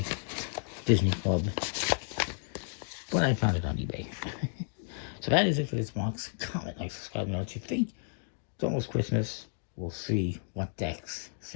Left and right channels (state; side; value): silent; right; digital silence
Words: Disney Club. But I found it on eBay. So that is it for this box. Comment, like, subscribe, know what you think. It's almost Christmas. We'll see what decks